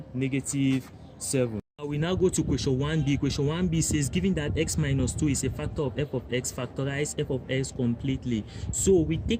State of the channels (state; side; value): identical; both; correlation 1.00